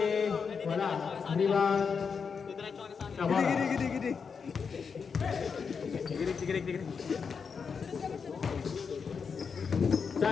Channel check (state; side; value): quieter; right; 5.9 dB